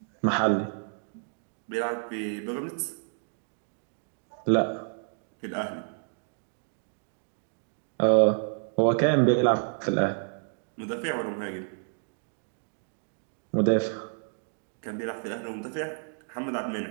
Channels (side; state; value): left; silent; digital silence